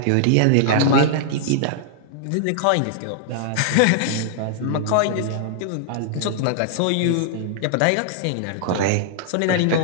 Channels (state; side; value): different; both; correlation -0.01